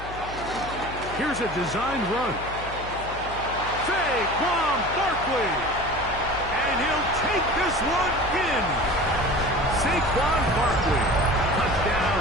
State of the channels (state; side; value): noise; left; hum, 12 dB below the sound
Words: Here's a designed run. Saquon Barkley. And he'll take this one in. Saquon Barkley. Touchdown,